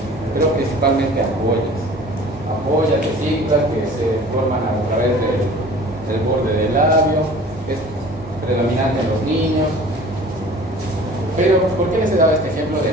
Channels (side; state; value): both; normal; correlation 0.45